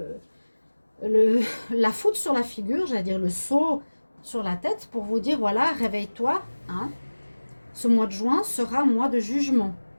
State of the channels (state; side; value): inverted; both; correlation -1.00